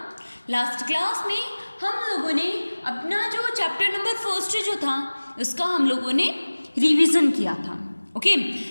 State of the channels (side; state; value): both; inverted; correlation -1.00